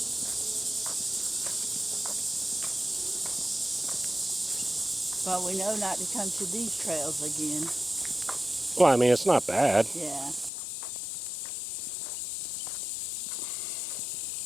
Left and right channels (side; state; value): right; drops out; at 10.5 s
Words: But we know not to come to these trails again. Well, I mean, it's not bad. Yeah.